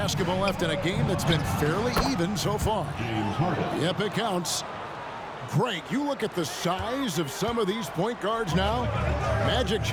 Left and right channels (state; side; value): identical; both; correlation 1.00